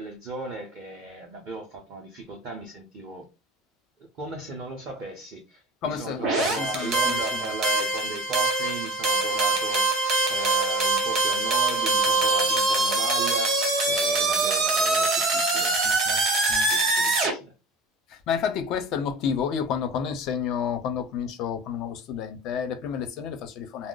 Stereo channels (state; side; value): normal; both; correlation 0.38